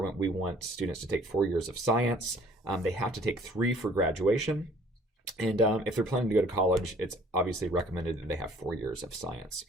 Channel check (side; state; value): both; normal; correlation 0.55